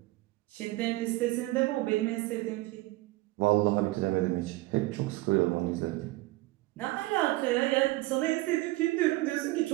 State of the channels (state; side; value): quieter; left; 19.3 dB